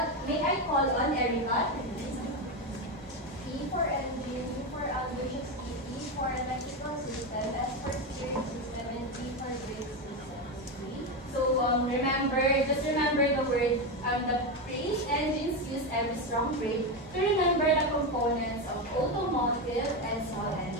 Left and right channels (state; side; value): normal; both; correlation 0.13